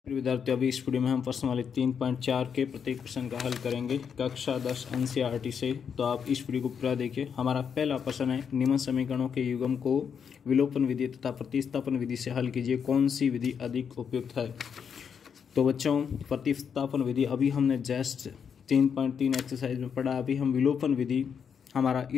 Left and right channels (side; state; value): right; quieter; 7.1 dB